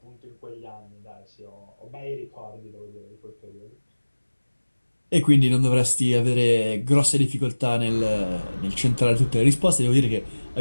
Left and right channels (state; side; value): inverted; both; correlation -1.00